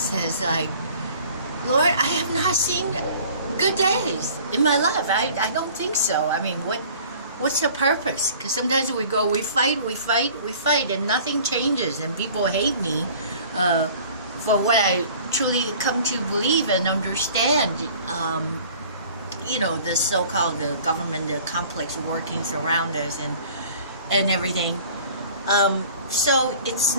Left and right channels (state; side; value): inverted; both; correlation -0.48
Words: like, Lord, I have not seen good days in my life. I don't think so. I mean, what's the purpose? Because sometimes we fight, and nothing changes, and people hate me for what I truly come to believe and understand. The so-called the government, the complex workings around us, and everything. So it's